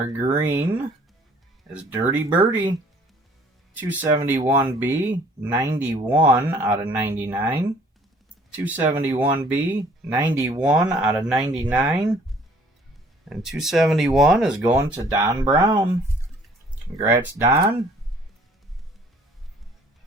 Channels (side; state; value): both; normal; correlation 0.57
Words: green is Dirty Birdie, 271B, 91 out of 99, 271B, 91 out of 99, and 271 is going to Don Brown. Congrats, Don.